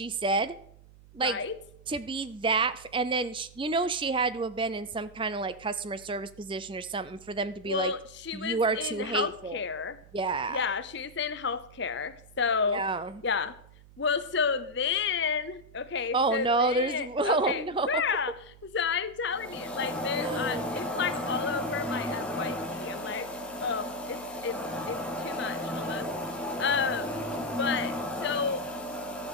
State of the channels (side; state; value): right; noise; hum, 22 dB below the sound